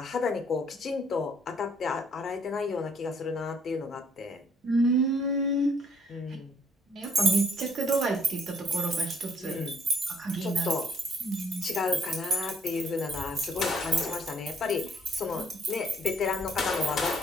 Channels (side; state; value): both; normal; correlation 0.63